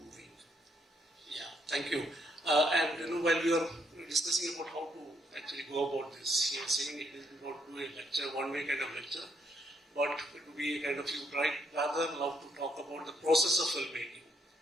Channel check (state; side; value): normal; both; correlation 0.73